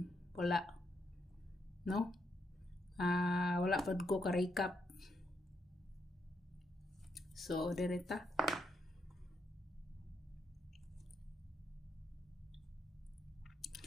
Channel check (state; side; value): normal; both; correlation 0.79